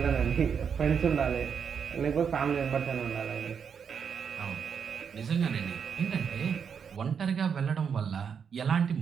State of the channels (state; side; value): quieter; left; 6.9 dB